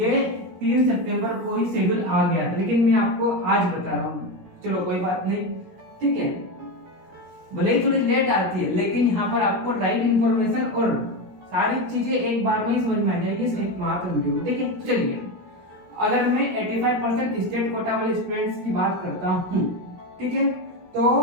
3 सितंबर को ही शेड्यूल आ गया था, लेकिन मैं आपको आज बता रहा हूँ। चलो कोई बात नहीं, ठीक है, भले ही थोड़ी लेट आती है लेकिन यहाँ पर आपको राइट इंफॉर्मेशन और सारी चीजें एक बार में ही समझ में आ जाएगी इस एक मात्र वीडियो में, ठीक है। तो चलिए, अगर मैं 85% स्टेट कोटा वाले स्टूडेंट्स की बात करता हूँ, ठीक है, तो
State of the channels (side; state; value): left; late; 17 ms